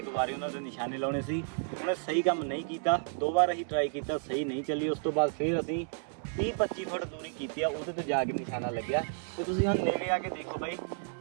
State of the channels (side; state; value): left; silent; 57 dB below the other